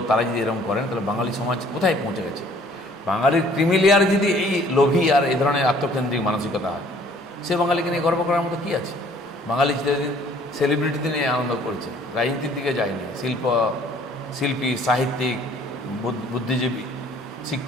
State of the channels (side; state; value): both; normal; correlation 0.57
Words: তারা যদি এরকম করেন, তাহলে বাঙালি সমাজ কোথায় পৌঁছে গেছে? বাঙালির ক্রিমিলিয়ার যদি এই লোভী আর এই ধরনের আত্মকেন্দ্রিক মানসিকতা হয়, সে বাঙালিকে নিয়ে গর্ব করার মতো কী আছে? বাঙালি চিরদিন সেলিব্রিটিতে নিয়ে আনন্দ করেছে, রাজনীতির দিকে যায়নি। শিল্পী, সাহিত্যিক, বুদ্ধিজীবী,